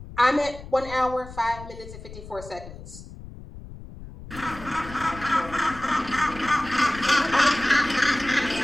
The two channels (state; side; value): noise; left; rumble, 14 dB below the sound